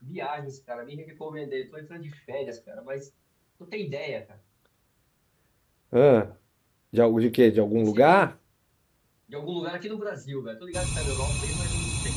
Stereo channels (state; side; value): identical; both; correlation 1.00